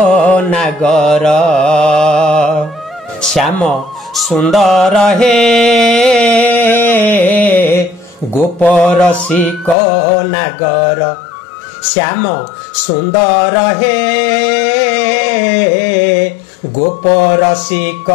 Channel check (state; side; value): drops out; right; at 9.8 s